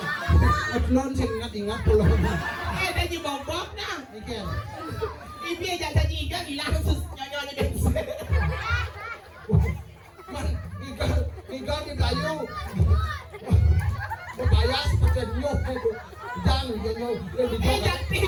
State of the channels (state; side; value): identical; both; correlation 1.00